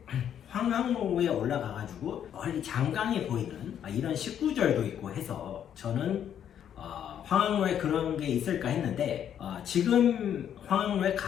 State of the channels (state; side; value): quieter; right; 9.5 dB